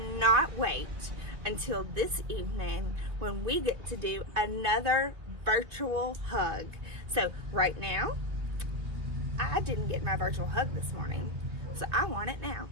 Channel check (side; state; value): left; late; 3.0 ms